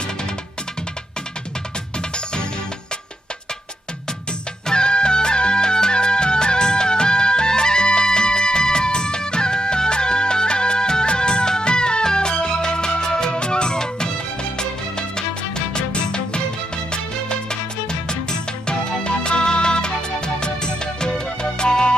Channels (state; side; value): normal; both; correlation 0.81